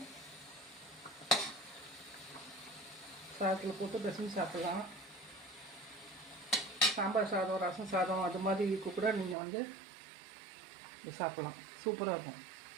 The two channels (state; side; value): drops out; left; at 9.3 s